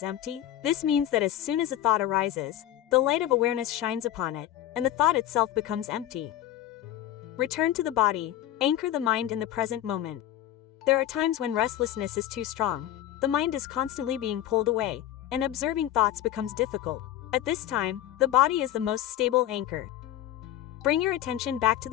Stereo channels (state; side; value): quieter; right; 12.4 dB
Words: empty? This means that as soon as a thought arises, the light of awareness shines upon it, and the thought itself becomes empty. Return to the body, anchor the mind in the present moment. There are times when restlessness is too strong, the mind is constantly being pulled away, and observing thoughts becomes difficult. At this time, the body is the most stable anchor. Bring your attention back to